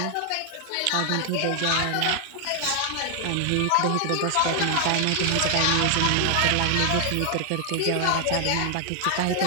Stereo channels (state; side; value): different; both; correlation 0.00